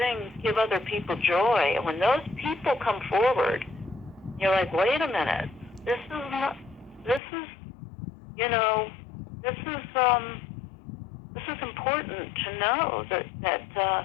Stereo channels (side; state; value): right; drops out; at 7.2 s